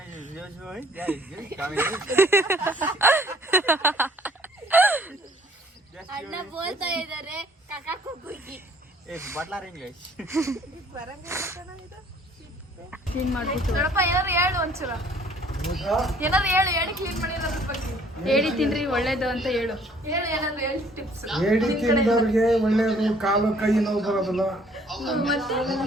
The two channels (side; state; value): both; normal; correlation 0.58